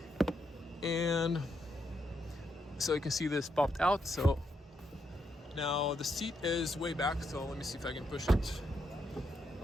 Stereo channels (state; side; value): normal; both; correlation 0.79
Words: And so you can see this popped out. So now the seat is way back, so let me see if I can push it